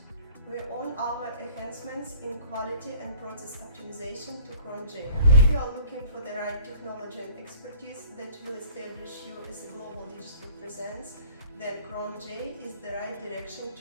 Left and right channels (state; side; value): inverted; both; correlation -0.51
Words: We own our enhancements in quality and process optimization to Cron-J. If you are looking for the right technology and expertise that will establish you as a global digital presence, then Cron-J is the right direction